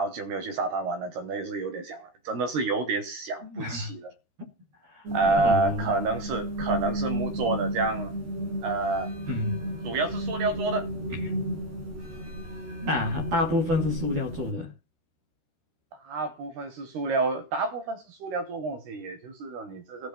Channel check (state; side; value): late; left; 13 ms